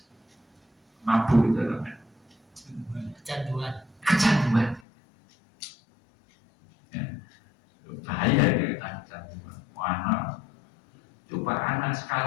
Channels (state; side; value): drops out; right; at 4.8 s